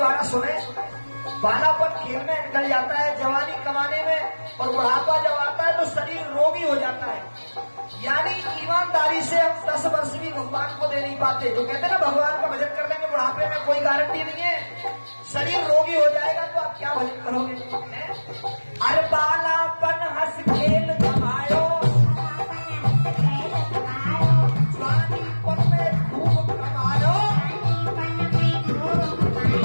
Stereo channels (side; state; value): both; inverted; correlation -1.00